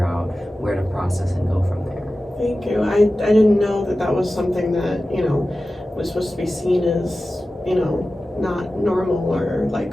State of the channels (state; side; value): normal; both; correlation 0.95